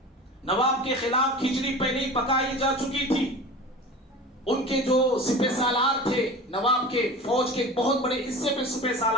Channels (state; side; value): normal; both; correlation 0.35